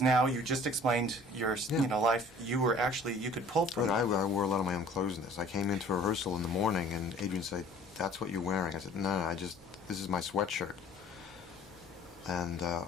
now, you just explained your, Yeah. life. You were actually, you could pull from Right, it. I wore a lot of my own clothes in this. I came into rehearsal in the morning, and Adrian said, "That's what you're wearing." I said, "No, this is my sweatshirt." And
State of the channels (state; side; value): noise; right; rumble, 26 dB below the sound